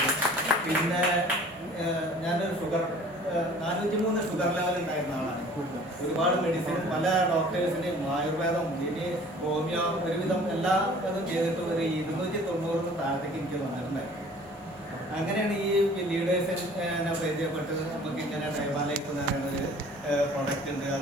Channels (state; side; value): normal; both; correlation 0.49